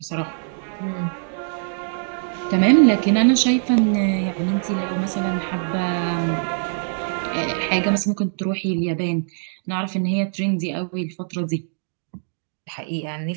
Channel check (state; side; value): silent; left; digital silence